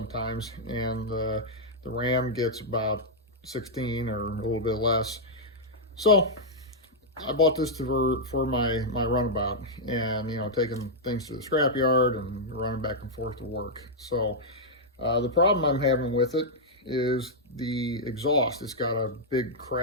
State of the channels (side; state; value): both; normal; correlation -0.05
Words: and the Ram gets about 16 or a little bit less. So I bought this for my runabout, and taking things to the scrapyard and running back and forth to work. So the problem I'm having with it is the exhaust. It's got a big